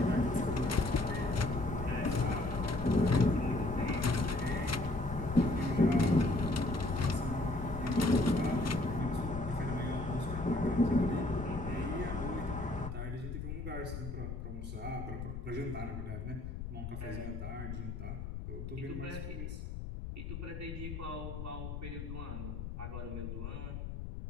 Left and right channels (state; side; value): noise; left; rumble, 6 dB below the sound